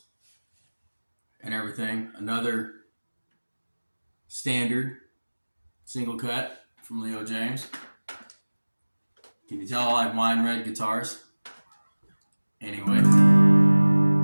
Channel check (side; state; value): both; inverted; correlation -1.00